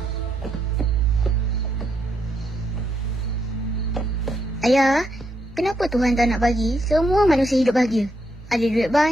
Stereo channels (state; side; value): normal; both; correlation 0.78